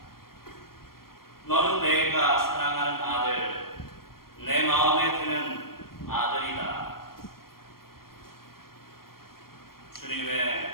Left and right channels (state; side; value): late; right; 0.93 ms